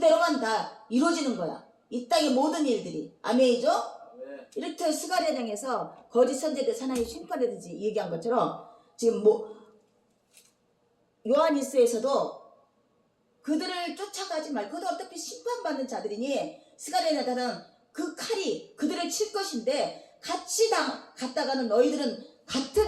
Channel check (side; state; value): both; identical; correlation 1.00